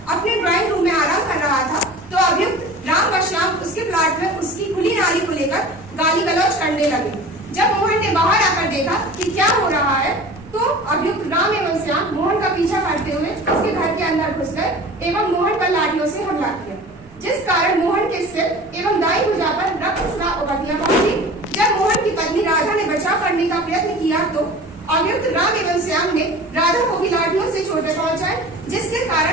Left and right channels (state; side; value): normal; both; correlation 0.40